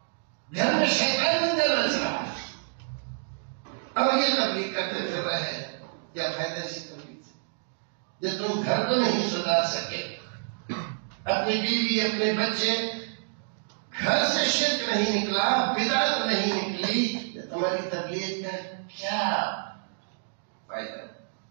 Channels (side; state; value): left; silent; digital silence